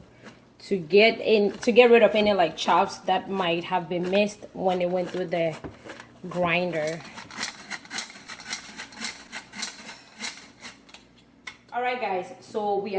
to get rid of any like chops that might have been missed when it went through the grinder. Alright guys, so we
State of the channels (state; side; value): identical; both; correlation 1.00